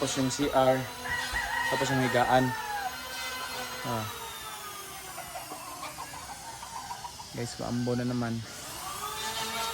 yung CR, tapos yung higaan. Guys, maambo na naman.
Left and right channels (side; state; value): both; identical; correlation 1.00